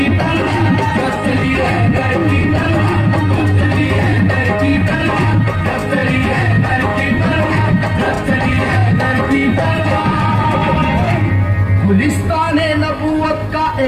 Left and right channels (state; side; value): identical; both; correlation 1.00